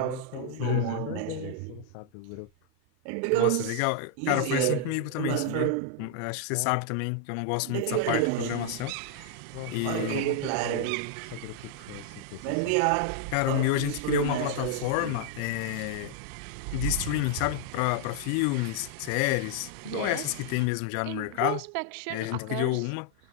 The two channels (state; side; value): different; both; correlation 0.00